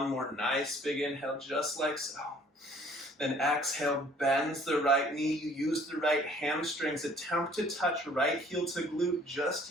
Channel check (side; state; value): both; normal; correlation 0.56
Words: more nice big inhale, just like so. Then exhale, bends the right knee. You use the right hamstrings. Attempt to touch right heel to glute, just